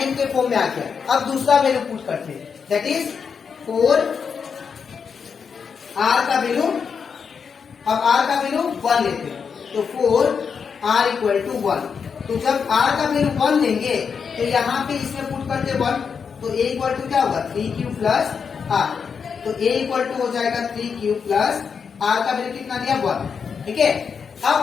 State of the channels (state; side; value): quieter; right; 6.2 dB